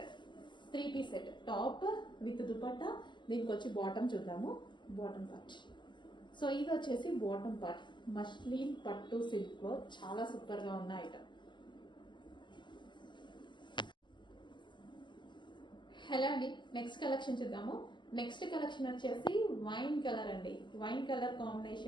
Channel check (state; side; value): late; right; 0.22 ms